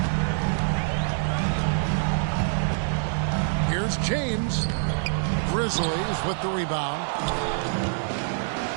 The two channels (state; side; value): silent; left; digital silence